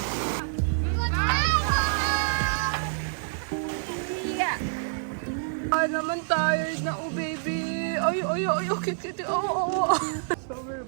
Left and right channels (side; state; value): left; silent; 60 dB below the other